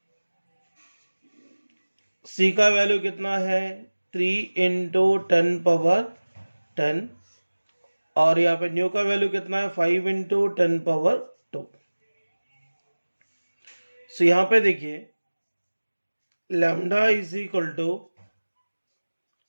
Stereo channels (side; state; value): both; inverted; correlation -1.00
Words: c का वैल्यू कितना है 3 इंटू 10⁻10, और यहाँ पे न्यू का वैल्यू कितना है 5 इंटू 10⁻2। सो यहाँ पे देखिए लैम्डा इज इक्वल टू